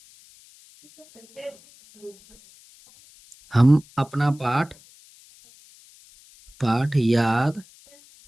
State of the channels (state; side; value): noise; left; hiss, 26 dB below the sound